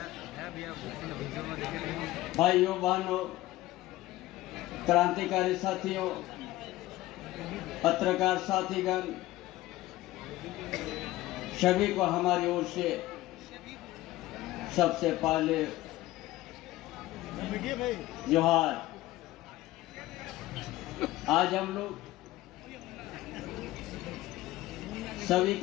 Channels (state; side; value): quieter; right; 16.9 dB